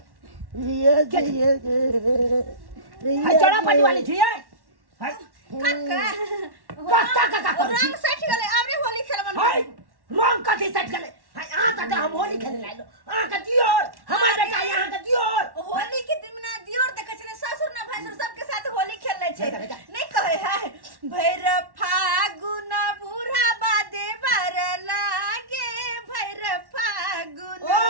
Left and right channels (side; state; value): left; late; 1.1 ms